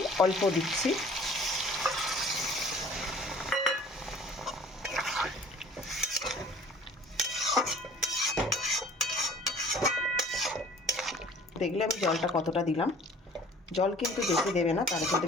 অল্প দিচ্ছি। দেখলে আমি জলটা কতটা দিলাম। জল কিন্তু বেশি দেবে না, তাহলে কিন্তু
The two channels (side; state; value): both; normal; correlation 0.50